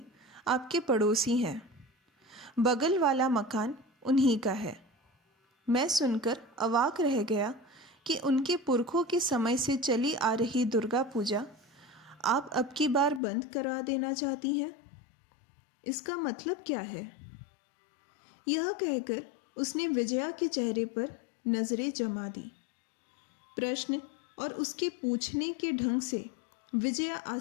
आपके पड़ोसी हैं, बगल वाला मकान उन्हीं का है। मैं सुनकर अवाक रह गया कि उनके पुरखों के समय से चली आ रही दुर्गा पूजा आप अब की बार बंद करा देना चाहती हैं। इसका मतलब क्या है? यह कहकर उसने विजया के चेहरे पर नजरें जमा दी। प्रश्न और उसके पूछने के ढंग से विजया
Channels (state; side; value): drops out; right; at 13.2 s